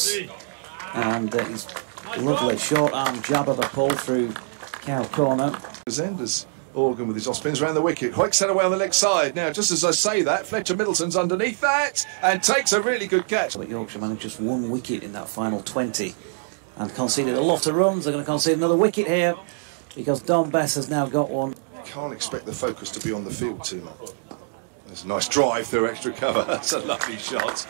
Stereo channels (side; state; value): left; silent; digital silence